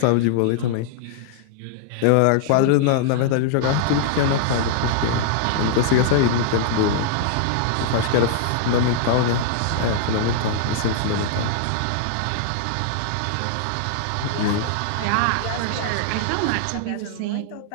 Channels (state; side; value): different; both; correlation -0.01